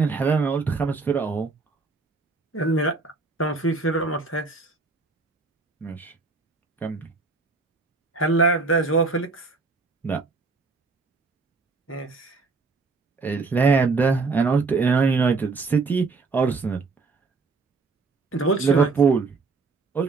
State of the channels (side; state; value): left; quieter; 4.2 dB